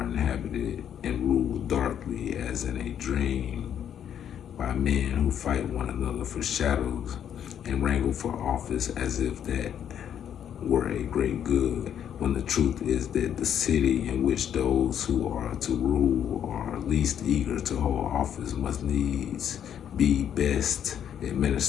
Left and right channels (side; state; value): right; quieter; 9.3 dB